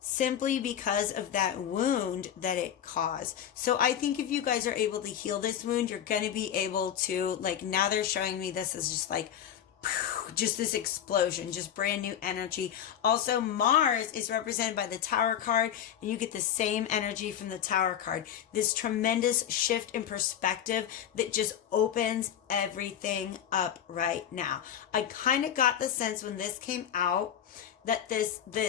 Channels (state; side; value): quieter; right; 9.7 dB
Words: because of that wound that it caused. So I think if you guys are able to heal this wound, you're going to be able to, now they're showing me this as just this explosion, just brand new energy. Also, Mars is represented by the Tower card, and you get the same energy from the Tower card. This tremendous shift in perspective that just opens everything up right now. I kind of got the sense when this came out that